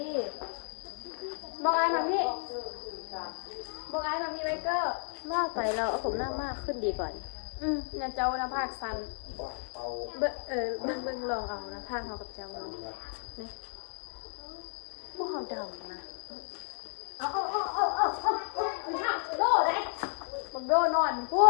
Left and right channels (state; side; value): silent; right; 56 dB below the other